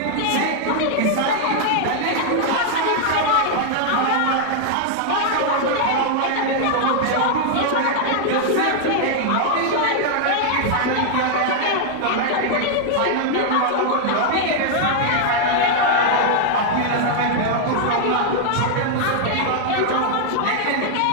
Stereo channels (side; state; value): both; different; correlation 0.00